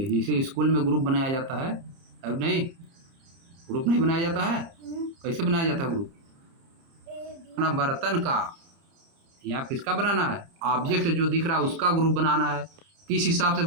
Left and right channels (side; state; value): left; late; 30 ms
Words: जैसे स्कूल में ग्रुप बनाया जाता है, अब नहीं ग्रुप नहीं बनाया जाता है। कैसे बनाया जाता है ग्रुप, अपना बर्तन का या किसका बनाना है, ऑब्जेक्ट जो दिख रहा है उसका ग्रुप बनाना है। किस हिसाब से